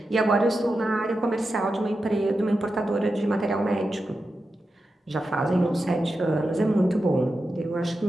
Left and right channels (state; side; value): normal; both; correlation 0.90